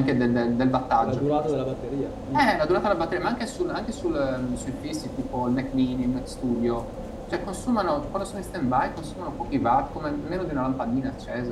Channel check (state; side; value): identical; both; correlation 1.00